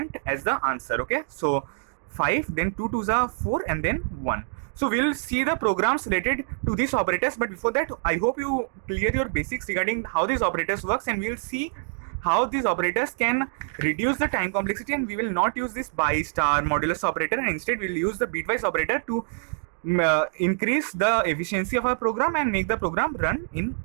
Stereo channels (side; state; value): left; silent; digital silence